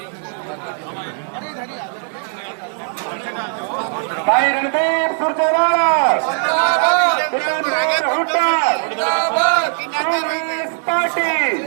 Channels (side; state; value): left; silent; 66 dB below the other